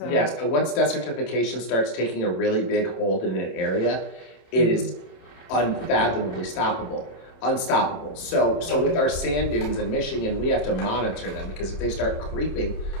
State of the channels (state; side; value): late; right; 28 ms